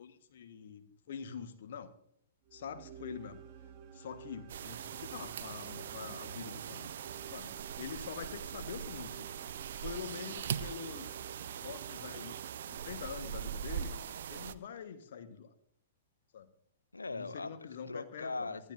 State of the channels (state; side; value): inverted; both; correlation -0.59